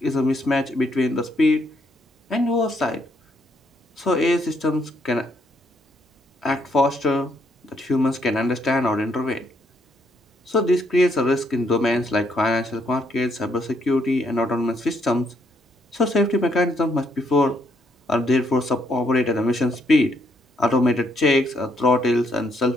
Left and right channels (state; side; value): normal; both; correlation 0.72